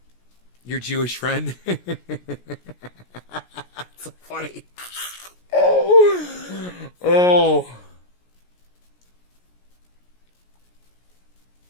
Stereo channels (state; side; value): late; right; 17 ms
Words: Your Jewish friend. It's so funny. Oh.